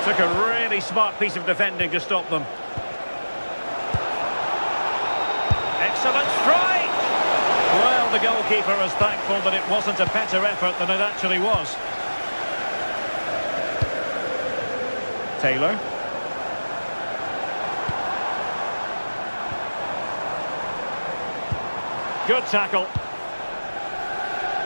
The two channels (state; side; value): inverted; both; correlation -1.00